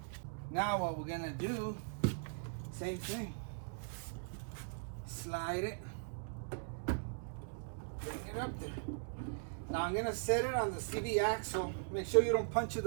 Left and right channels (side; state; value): left; silent; digital silence